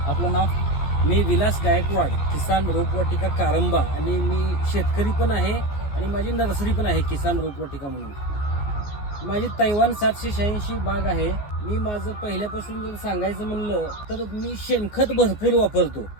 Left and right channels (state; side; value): late; right; 14 ms